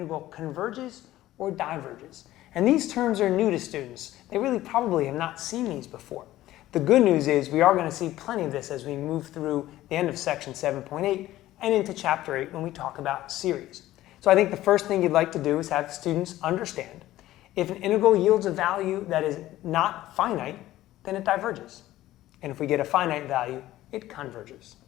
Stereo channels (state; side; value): quieter; right; 15.1 dB